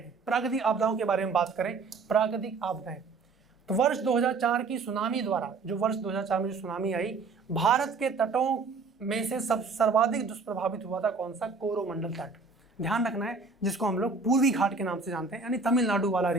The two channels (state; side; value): quieter; left; 4.3 dB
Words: प्राकृतिक आपदाओं के बारे में बात करें, प्राकृतिक आपदाएं, तो वर्ष 2004 की सुनामी द्वारा, जो वर्ष 2004 में जो सुनामी आई, भारत के तटों में से सर्वाधिक दुष्प्रभावित हुआ था कौन सा? कोरोमंडल तट। ध्यान रखना है, जिसको हम लोग पूर्वी घाट के नाम से जानते हैं, यानी तमिलनाडु वाला